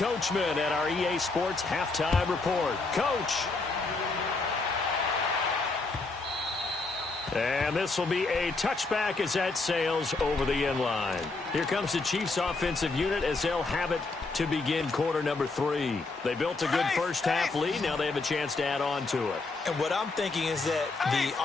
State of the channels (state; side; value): quieter; right; 3.7 dB